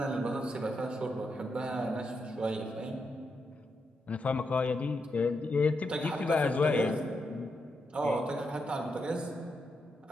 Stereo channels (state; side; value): normal; both; correlation 0.83